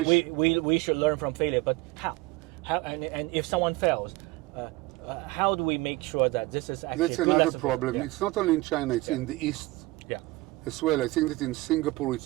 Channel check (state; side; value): quieter; left; 21.2 dB